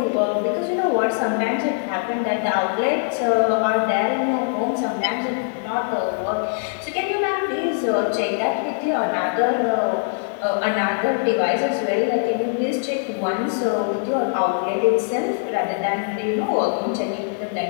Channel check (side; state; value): right; silent; digital silence